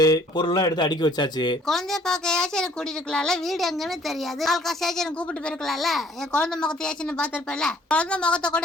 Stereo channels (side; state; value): both; normal; correlation 0.58